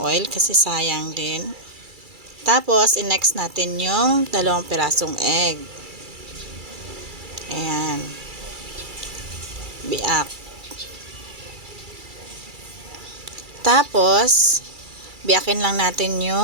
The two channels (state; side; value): late; left; 2.3 ms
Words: kasi sayang din. Tapos, i-next natin yung 2 pirasong egg. Ayan. Biak. Tapos, biakin lang natin